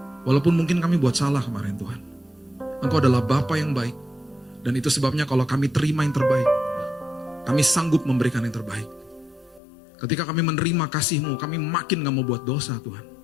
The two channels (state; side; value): drops out; right; at 9.6 s